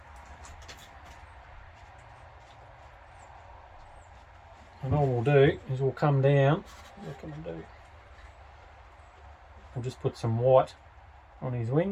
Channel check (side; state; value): both; identical; correlation 1.00